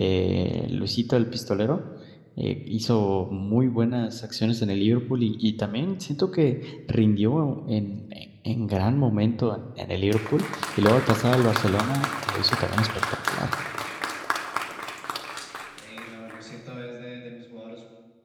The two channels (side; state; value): both; identical; correlation 1.00